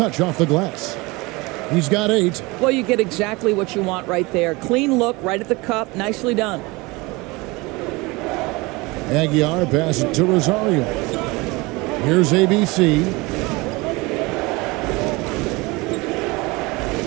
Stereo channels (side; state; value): left; quieter; 24.1 dB